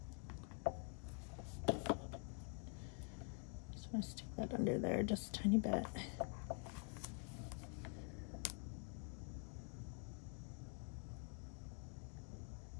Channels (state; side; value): quieter; right; 38.8 dB